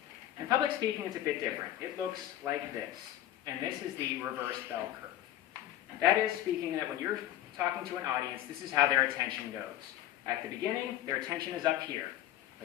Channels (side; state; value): right; quieter; 13.0 dB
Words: In public speaking, it's a bit different. It looks like this, and this is the reverse bell curve. That is speaking that when you're talking to an audience, this is how their attention goes. At the beginning, their attention is up here.